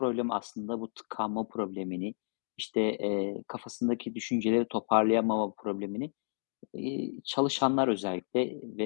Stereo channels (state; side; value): silent; right; digital silence